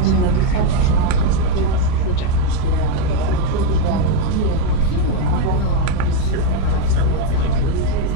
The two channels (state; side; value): different; both; correlation 0.03